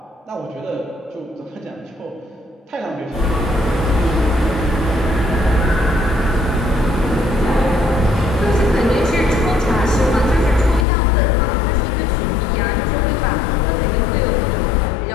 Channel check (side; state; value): right; drops out; at 10.9 s